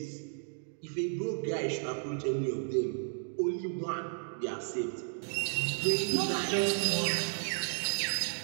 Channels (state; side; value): silent; left; digital silence